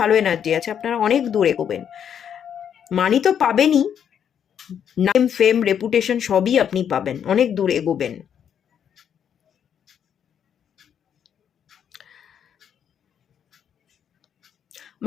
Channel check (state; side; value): quieter; right; 8.6 dB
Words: এনার্জি আছে, আপনারা অনেক দূর এগোবেন, মানি তো পাবেনই, নাম, ফেম, রেপুটেশন সবই আপনি পাবেন, অনেক দূর এগোবেন।